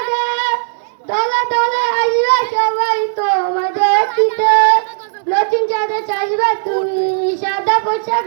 দলে দলে আসবে সবাই তোমায় দেখিতে নতুন চাঁদে চাইবে তুমি সাদা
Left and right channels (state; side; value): silent; left; digital silence